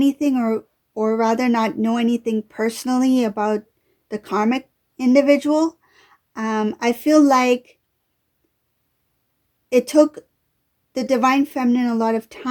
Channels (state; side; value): identical; both; correlation 1.00